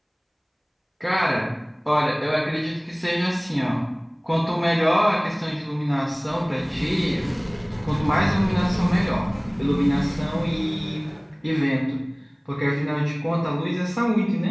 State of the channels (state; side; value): identical; both; correlation 1.00